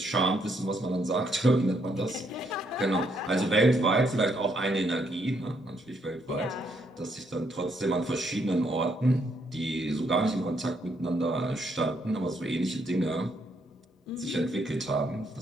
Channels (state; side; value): normal; both; correlation 0.74